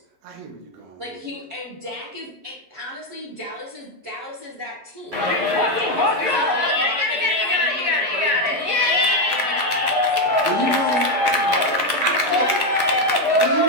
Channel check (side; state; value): left; late; 11 ms